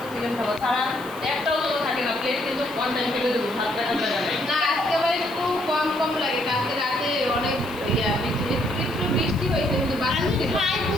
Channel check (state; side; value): noise; left; hiss, 20 dB below the sound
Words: চিকেন খাবো তারা একটাও তো থাকে না প্লেট কিন্তু ওয়ান টাইম ফেলে দেবো ভাত রাখার জায়গা নেই না আজকে আবার একটু কম লাগে কালকে রাতে অনেক একটু বৃষ্টি হয়েছে কিন্তু বাতাস ছিল